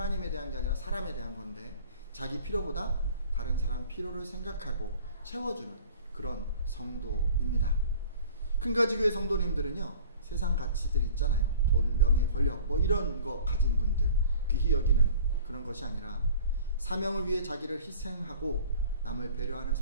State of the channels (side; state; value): both; inverted; correlation -0.46